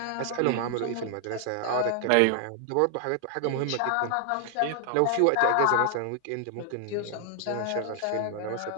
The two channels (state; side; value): different; both; correlation 0.00